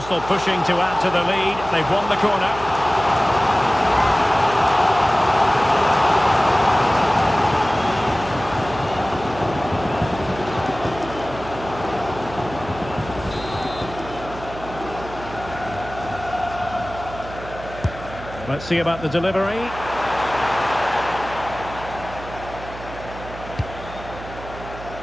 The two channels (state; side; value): noise; right; hum, 13 dB below the sound